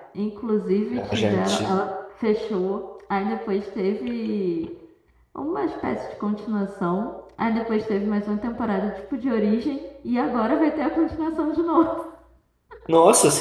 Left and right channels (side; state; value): both; identical; correlation 1.00